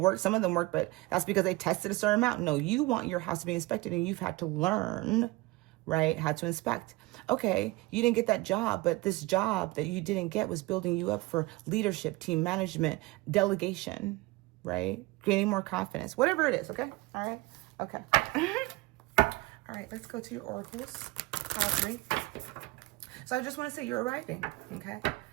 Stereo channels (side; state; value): left; quieter; 21.5 dB